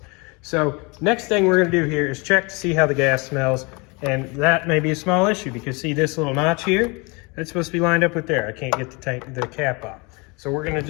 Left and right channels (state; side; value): quieter; right; 28.3 dB